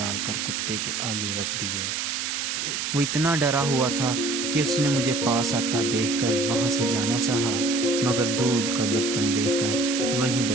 کر کتے کے آگے رکھ دیے۔ وہ اتنا ڈرا ہوا تھا کہ اس نے مجھے پاس آتا دیکھ کر وہاں سے جانا چاہا، مگر دودھ کا برتن دیکھ کر وہیں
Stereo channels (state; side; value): noise; right; hiss, 2 dB below the sound